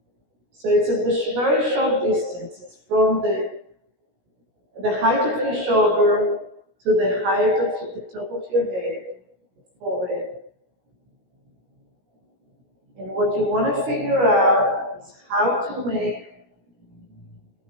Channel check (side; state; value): left; late; 16 ms